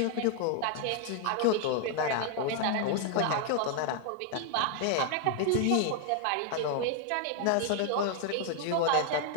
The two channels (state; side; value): different; both; correlation 0.00